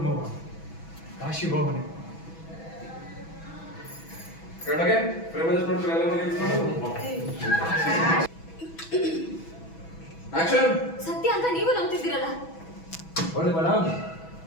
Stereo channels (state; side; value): late; right; 6.1 ms